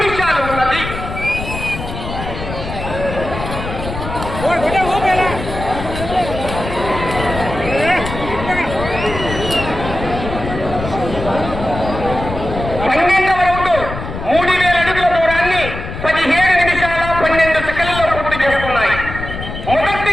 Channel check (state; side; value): noise; left; rumble, 8 dB below the sound